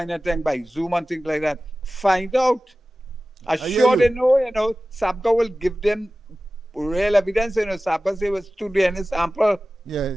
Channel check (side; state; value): both; normal; correlation 0.96